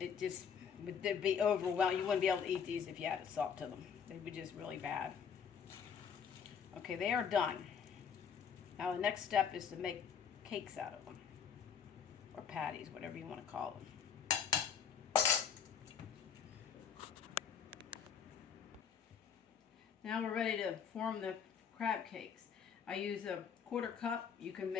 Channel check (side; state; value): right; quieter; 7.3 dB